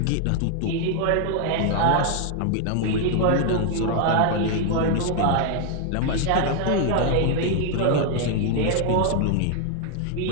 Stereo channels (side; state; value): both; different; correlation 0.00